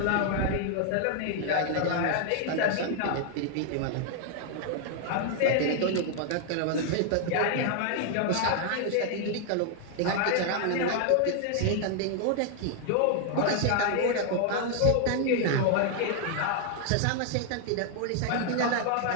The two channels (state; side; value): different; both; correlation 0.00